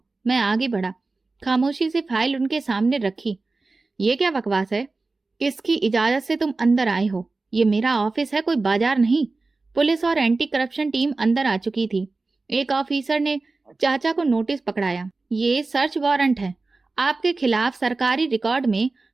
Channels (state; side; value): quieter; left; 3.6 dB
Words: मैं आगे बढ़ा, खामोशी से फाइल उनके सामने रखी। ये क्या बकवास है? किसकी इजाजत से तुम अंदर आए हो? ये मेरा ऑफिस है, कोई बाजार नहीं। पुलिस और एंटी करप्शन टीम अंदर आ चुकी थी। एक ऑफिसर ने चाचा को नोटिस पकड़ाया। ये सर्च वारंट है, आपके खिलाफ सरकारी रिकॉर्ड में